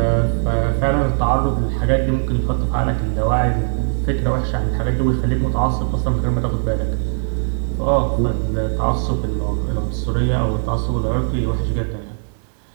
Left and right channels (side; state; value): left; silent; digital silence